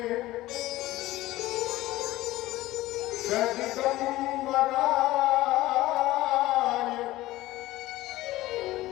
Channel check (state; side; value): quieter; right; 17.1 dB